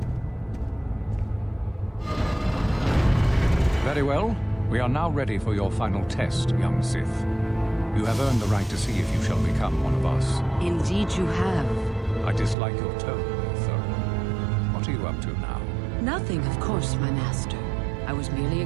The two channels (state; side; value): drops out; left; at 12.6 s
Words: Very well. We are now ready for your final test, young Sith. You have earned the right to see if you shall become one of us. Indeed you have. I dislike your tone, though. What are you up to now? Nothing, of course, my master. I was merely